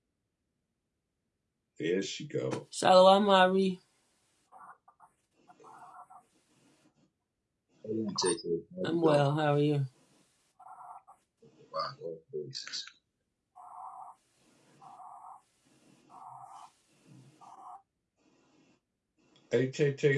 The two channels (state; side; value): identical; both; correlation 1.00